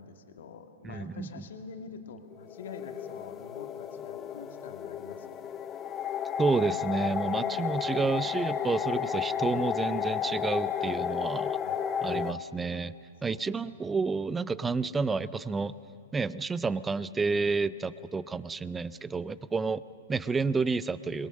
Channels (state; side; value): normal; both; correlation 0.75